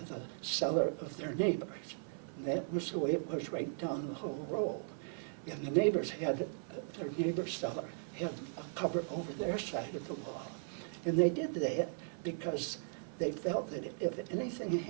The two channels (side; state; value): left; silent; 53 dB below the other